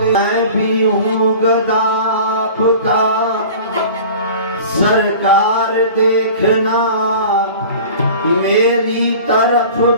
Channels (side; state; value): both; inverted; correlation -0.41